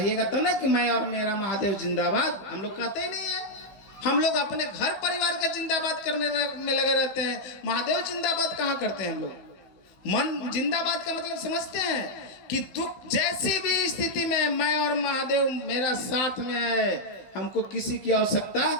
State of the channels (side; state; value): right; late; 15 ms